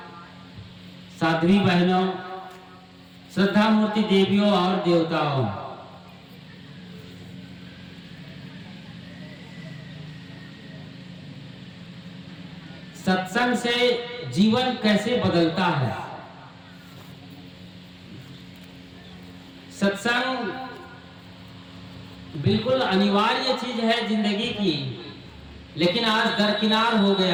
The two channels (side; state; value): both; identical; correlation 1.00